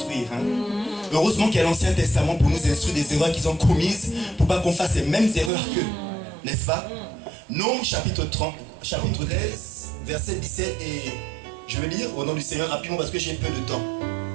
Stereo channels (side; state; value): left; drops out; at 5.5 s